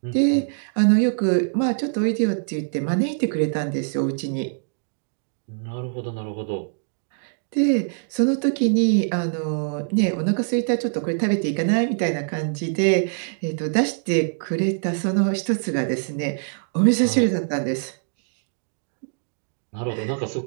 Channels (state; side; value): silent; left; digital silence